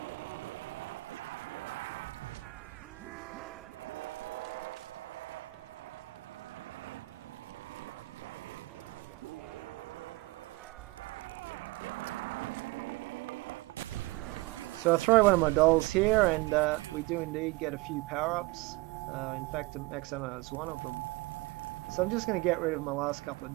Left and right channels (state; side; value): quieter; left; 22.2 dB